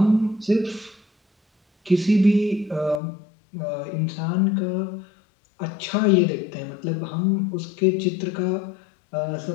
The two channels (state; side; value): drops out; right; at 3.0 s